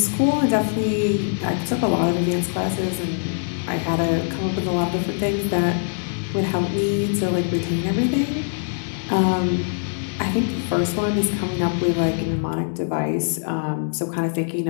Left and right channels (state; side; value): silent; right; digital silence